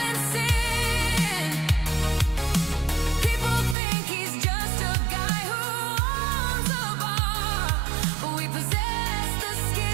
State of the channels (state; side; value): drops out; left; at 3.8 s